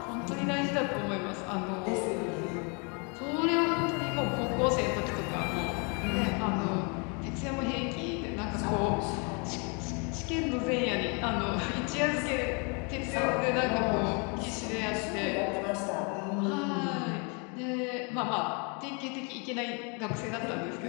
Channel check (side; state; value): right; quieter; 34.3 dB